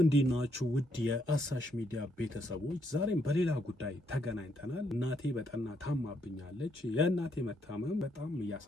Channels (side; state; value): both; normal; correlation 0.74